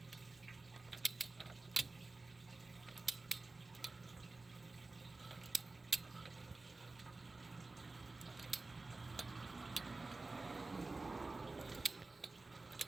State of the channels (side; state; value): left; quieter; 3.4 dB